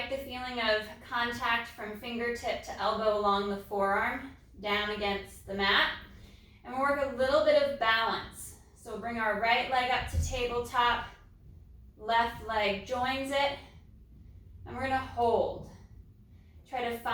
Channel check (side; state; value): both; identical; correlation 1.00